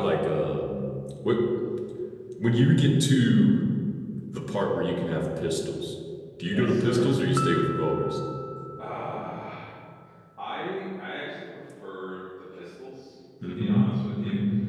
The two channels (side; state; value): both; identical; correlation 1.00